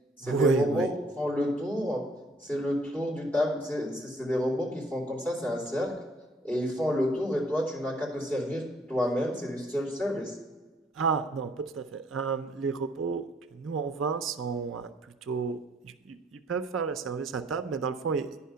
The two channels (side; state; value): both; normal; correlation 0.62